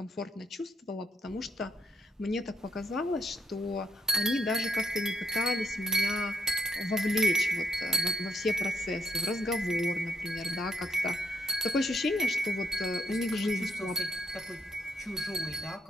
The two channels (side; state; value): both; normal; correlation 0.76